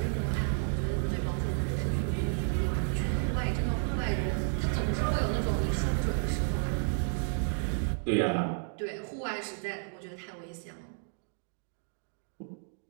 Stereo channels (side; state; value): left; silent; 57 dB below the other